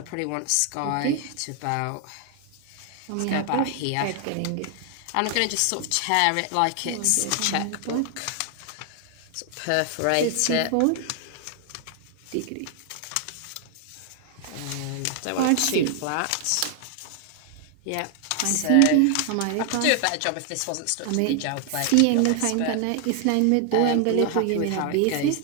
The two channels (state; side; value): different; both; correlation 0.00